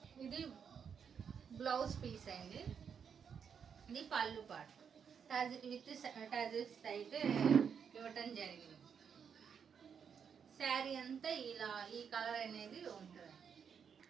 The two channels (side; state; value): left; quieter; 7.1 dB